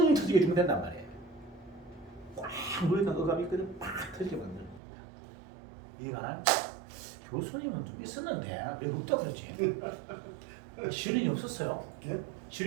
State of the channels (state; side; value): drops out; left; at 4.8 s